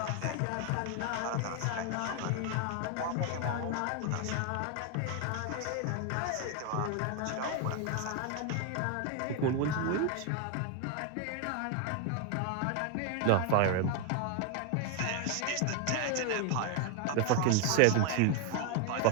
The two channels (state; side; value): different; both; correlation 0.01